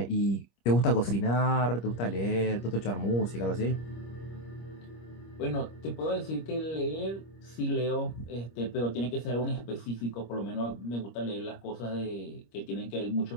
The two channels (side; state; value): right; late; 25 ms